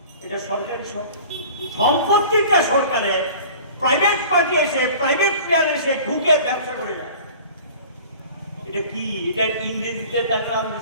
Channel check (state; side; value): inverted; both; correlation -0.44